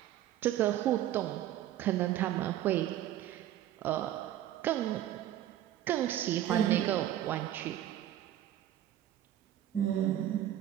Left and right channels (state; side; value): quieter; left; 12.3 dB